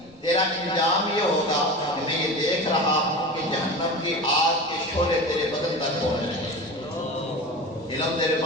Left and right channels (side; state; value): left; noise; rumble, 28 dB below the sound